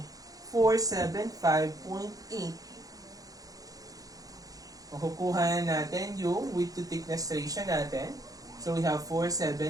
475.8. Makukuha natin yung width to thickness ratio natin. So we have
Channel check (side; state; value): left; late; 0.17 ms